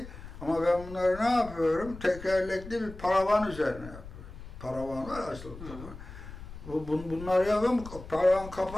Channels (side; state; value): left; noise; rumble, 14 dB below the sound